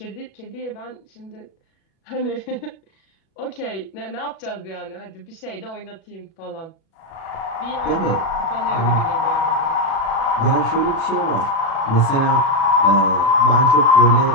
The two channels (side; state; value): right; late; 37 ms